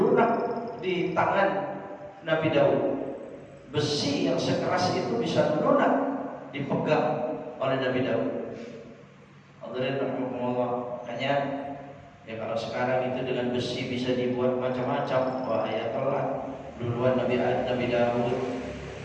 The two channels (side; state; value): both; identical; correlation 1.00